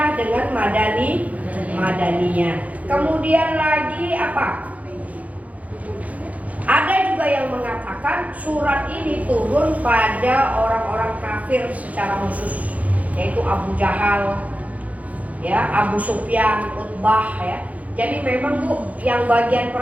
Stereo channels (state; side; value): late; left; 0.070 ms